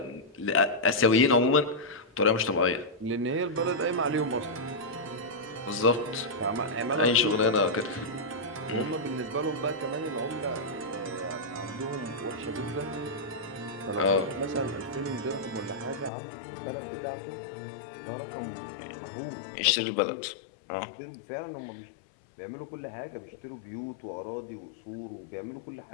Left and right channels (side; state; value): right; drops out; at 16.1 s